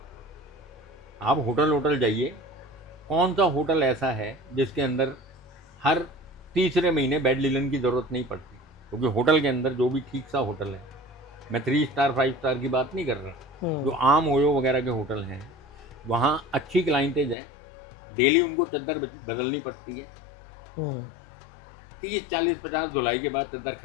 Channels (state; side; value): drops out; right; at 17.4 s